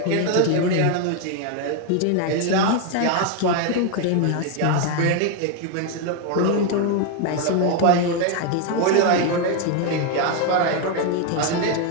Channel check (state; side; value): different; both; correlation 0.01